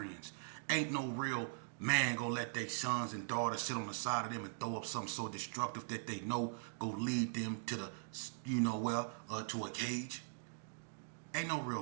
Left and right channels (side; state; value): left; silent; digital silence